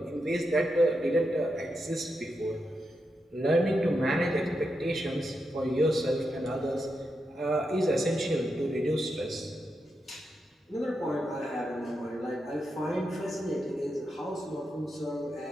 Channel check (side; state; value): both; normal; correlation 0.86